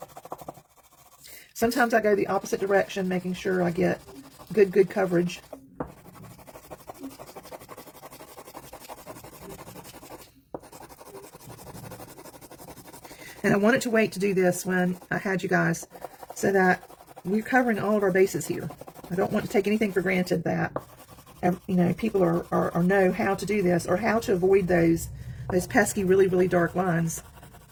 Sometimes I go the opposite direction, making sure I get good coverage. And I wanted to wait to do this when I had you guys so that we're covering all of our bases here. I don't want to take anything for granted that, you know, people know how to do this or how to avoid those pesky, really dark lines,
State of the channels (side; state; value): both; identical; correlation 1.00